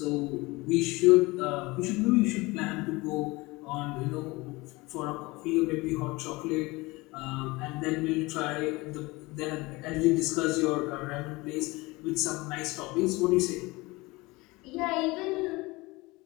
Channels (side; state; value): right; quieter; 22.8 dB